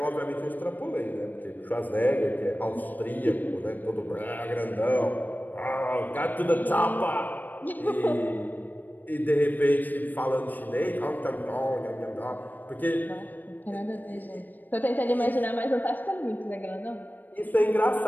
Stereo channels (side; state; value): right; late; 0.087 ms